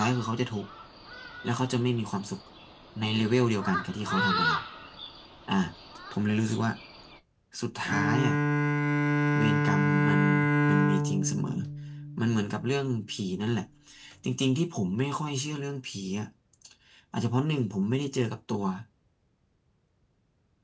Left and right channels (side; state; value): both; identical; correlation 1.00